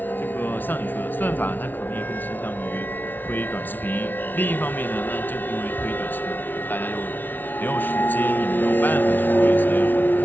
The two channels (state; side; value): late; right; 0.088 ms